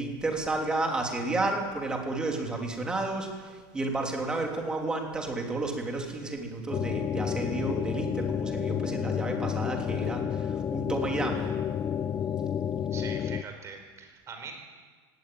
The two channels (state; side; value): normal; both; correlation 0.61